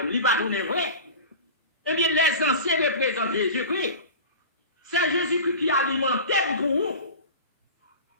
lui, pas tourner vrai. Eh bien, les anciens représentent Jésus-Christ. C'est Jésus-Christ qui alimentait pour vous.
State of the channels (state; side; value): inverted; both; correlation -0.34